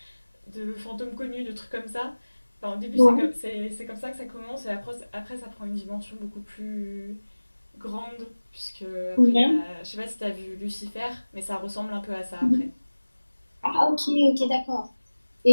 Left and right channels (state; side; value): inverted; both; correlation -1.00